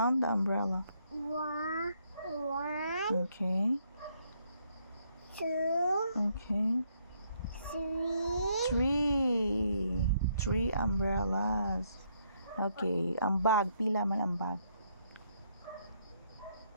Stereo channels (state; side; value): inverted; both; correlation -0.72